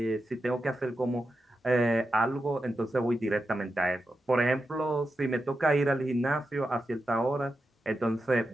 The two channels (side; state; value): both; normal; correlation 0.89